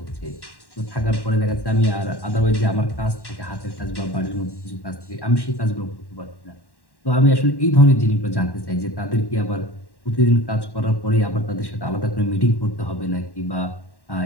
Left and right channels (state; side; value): late; right; 1.1 ms